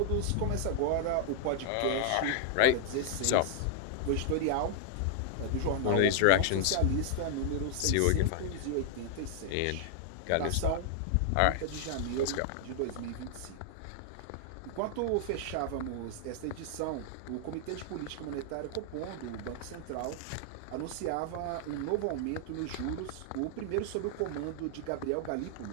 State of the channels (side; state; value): both; different; correlation 0.00